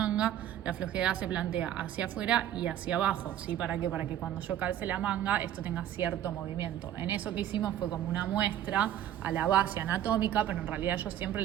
la flojedad se plantea hacia afuera y hacia abajo, ¿sí? ¿Para qué? Para que cuando yo calce la manga, esto tenga cierto movimiento. En eso que hicimos fue como una muestra a la base anatómica, pero en realidad yo siempre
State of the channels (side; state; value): left; quieter; 11.5 dB